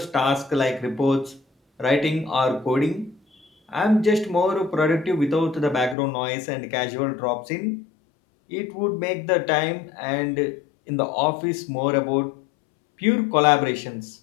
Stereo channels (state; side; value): drops out; right; at 6.0 s